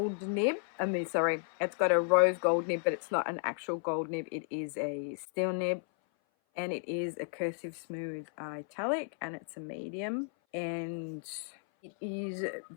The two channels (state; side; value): silent; right; 55 dB below the other